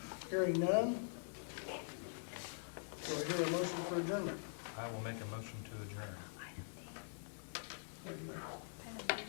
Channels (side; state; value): right; silent; digital silence